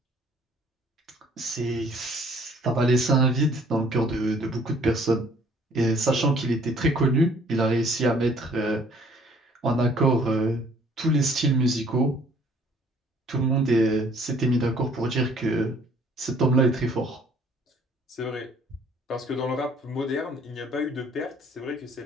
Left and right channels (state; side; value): normal; both; correlation 0.58